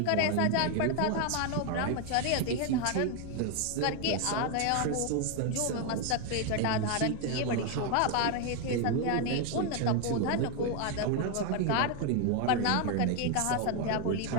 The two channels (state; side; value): different; both; correlation 0.01